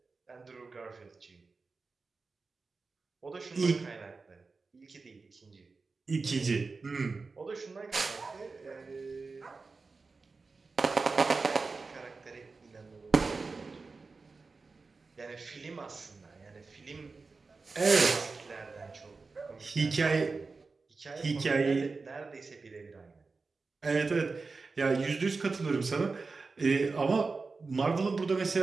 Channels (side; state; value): left; quieter; 4.2 dB